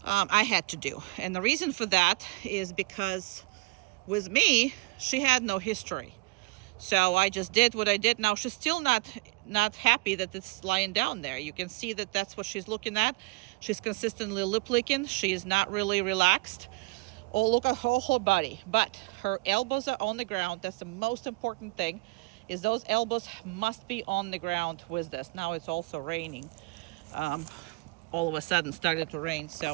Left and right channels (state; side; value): quieter; left; 25.3 dB